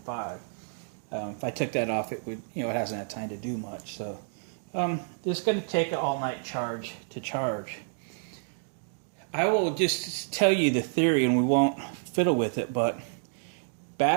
If I took that off, it would, it hasn't had time to do much. So this is going to take an all-night charge to charge. I will just tell you the theory, and we won't fiddle with it, but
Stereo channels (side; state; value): left; silent; digital silence